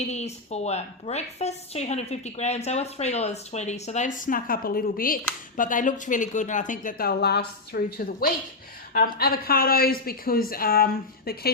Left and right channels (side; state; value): right; quieter; 3.4 dB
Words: for breakfast. 250 grams. They were $3.20, so they've snuck up a little bit, but they looked really good, and I think that they'll last through to the week. Avocados, because the